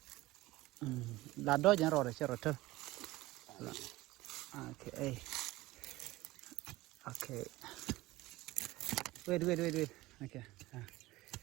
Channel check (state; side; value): quieter; left; 18.8 dB